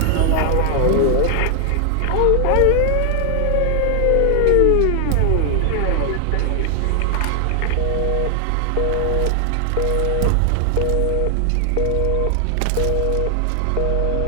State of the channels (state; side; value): different; both; correlation 0.00